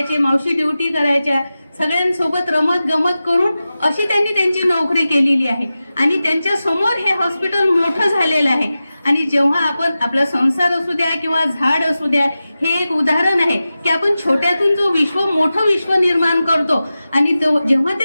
मावशी ड्युटी करायच्या, सगळ्यांसोबत रमत गमत करून अशी त्यांनी त्यांची नोकरी केलेली आहे. आणि त्यांच्या समोर हे हॉस्पिटल मोठं झालेलं आहे. आणि जेव्हा आपण आपला संसार असू द्या किंवा झाड असू द्या, हे एक उदाहरण आहे की आपण छोट्यातून जो मोठं विश्व निर्माण करतो आणि जेव्हा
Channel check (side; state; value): both; inverted; correlation -0.94